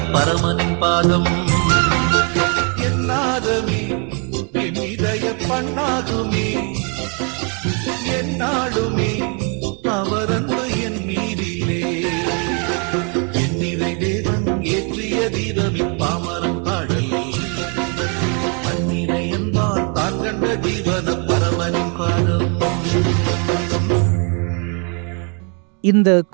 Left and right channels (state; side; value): quieter; left; 35.8 dB